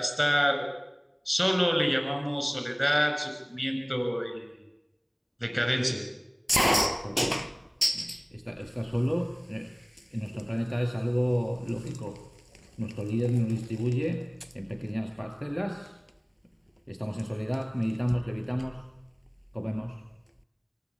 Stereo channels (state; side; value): identical; both; correlation 1.00